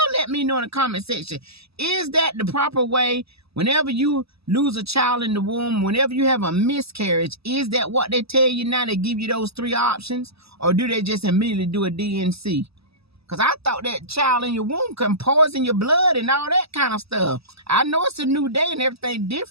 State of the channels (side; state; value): left; late; 0.78 ms